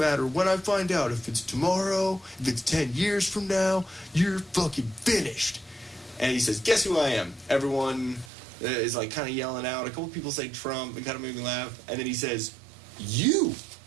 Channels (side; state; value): left; drops out; at 8.3 s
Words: when I find out. If it's tomorrow, if it's 10 years from now, you're fucking finished. And he says, guess who I am? Everyone is like kind of yelling out. A couple people say Trump. It kind of made me laugh. And then he says, you